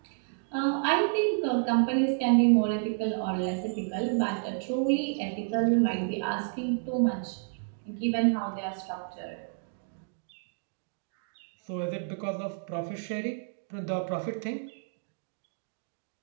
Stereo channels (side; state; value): left; silent; digital silence